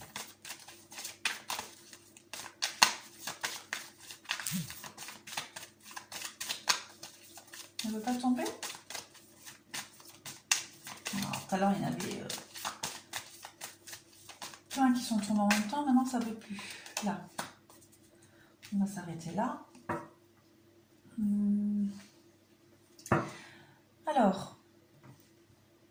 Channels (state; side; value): identical; both; correlation 1.00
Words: Elle ne veut pas tomber? Alors, tout à l'heure, il y en avait plein qui sont tombés en même temps. Maintenant, ça ne veut plus. Là. On va s'arrêter là. Alors,